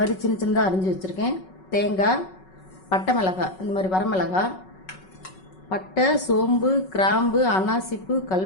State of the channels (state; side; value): late; right; 5.4 ms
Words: சின்ன சின்னதாக அரிஞ்சு வச்சிருக்கேன், தேங்காய், பட்டை மிளகாய் இந்த மாதிரி வரமிளகாய், பட்டை, சோம்பு, கிராம்பு, அனாசிப்பு,